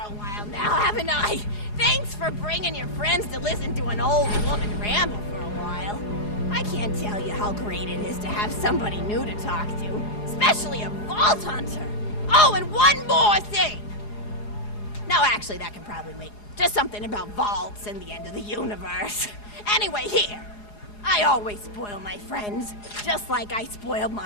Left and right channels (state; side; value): late; right; 4.8 ms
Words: while now, haven't I? Thanks for bringing your friends to listen to an old woman ramble for a while. I can't tell you how great it is to have somebody new to talk to, especially a Vault Hunter. Oh, and one more thing. No, actually, that can probably wait. Just something about vaults and the end of the universe. Anyway, here. I always spoil my friends, just like I spoiled